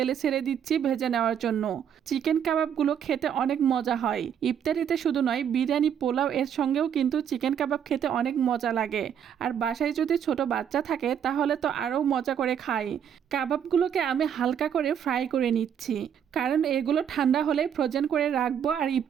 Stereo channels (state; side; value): quieter; left; 8.6 dB